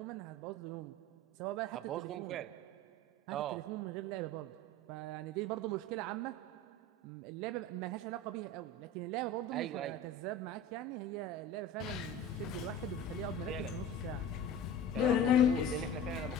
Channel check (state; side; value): normal; both; correlation 0.35